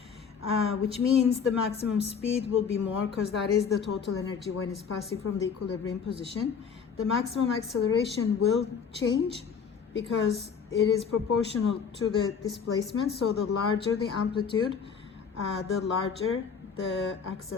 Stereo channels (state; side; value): quieter; right; 6.4 dB